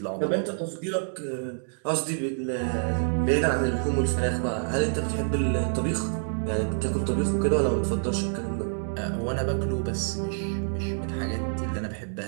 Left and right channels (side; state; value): left; silent; digital silence